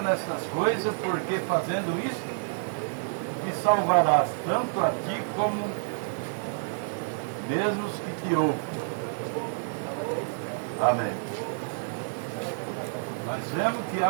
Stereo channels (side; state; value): left; silent; 59 dB below the other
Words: nessas coisas, porque fazendo isso, te salvarás tanto a ti como mesmo os que te ouvem. Amém. Nós vemos que